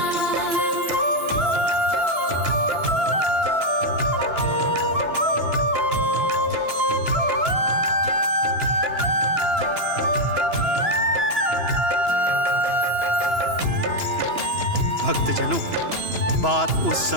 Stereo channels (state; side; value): late; left; 2.9 ms